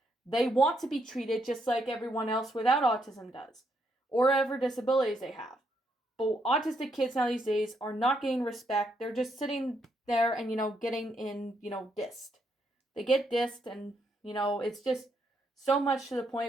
They want to be treated just like everyone else without autism does, or whatever disabilities they have. But autistic kids now these days are not getting respect. They're just sitting there and, getting dissed. They get dissed and, it's just so much to the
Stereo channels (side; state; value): both; normal; correlation 0.77